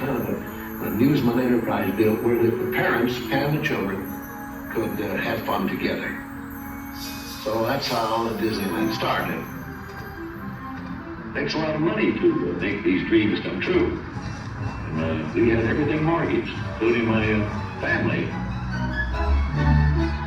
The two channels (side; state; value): both; identical; correlation 1.00